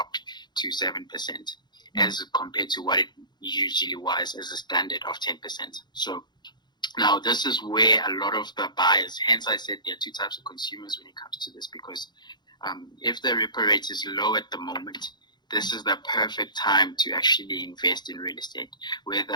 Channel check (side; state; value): right; late; 0.21 ms